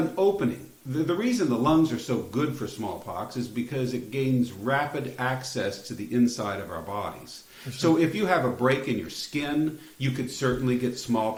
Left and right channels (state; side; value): identical; both; correlation 1.00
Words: opening, the reason the lungs are so good for smallpox is because it gains rapid access to the inside of our bodies. So if you have a break in your skin, you could certainly get